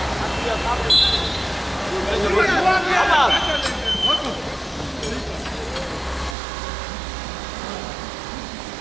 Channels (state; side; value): drops out; left; at 6.4 s